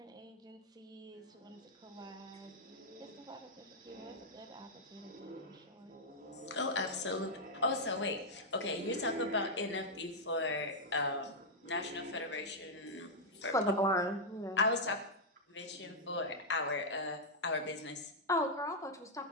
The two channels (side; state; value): both; normal; correlation -0.03